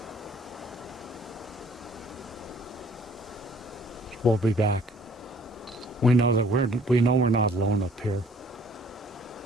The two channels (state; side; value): normal; both; correlation 0.57